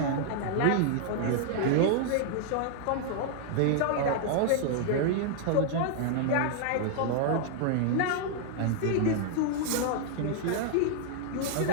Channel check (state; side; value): different; both; correlation -0.01